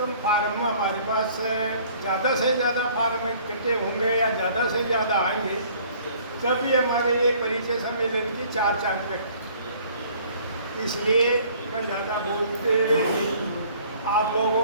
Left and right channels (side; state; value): both; inverted; correlation -0.55